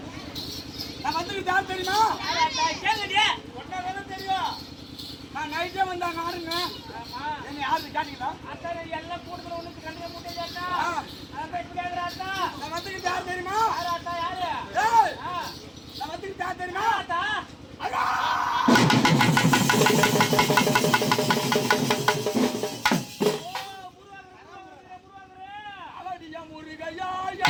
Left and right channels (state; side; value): identical; both; correlation 1.00